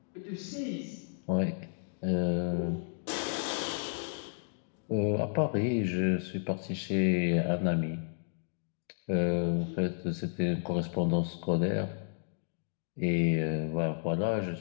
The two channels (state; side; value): silent; right; digital silence